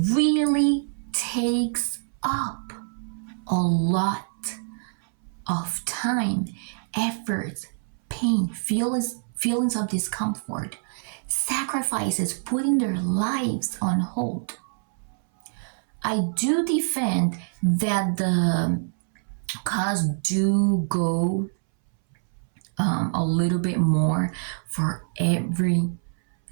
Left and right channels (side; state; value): left; silent; 61 dB below the other